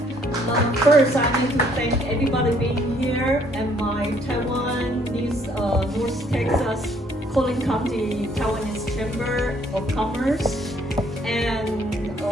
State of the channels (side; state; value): both; normal; correlation 0.64